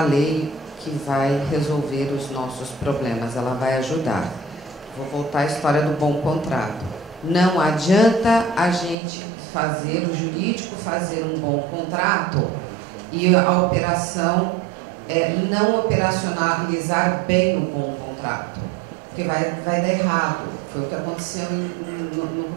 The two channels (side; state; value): left; drops out; at 9.0 s